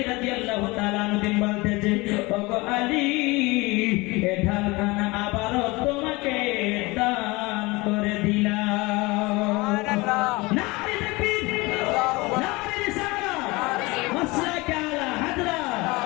রাদিয়াল্লাহু তাআলা আনহু বলতেছে ওগো আলী এই ঢালখানা আবারও তোমাকে দান করে দিলাম। নারে তাকবীর, নারে রিসালাত, মাসলাকে আলা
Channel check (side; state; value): right; quieter; 23.4 dB